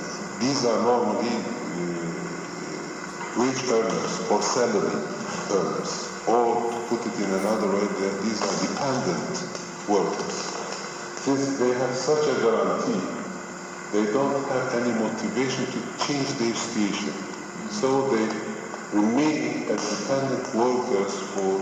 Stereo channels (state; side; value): identical; both; correlation 1.00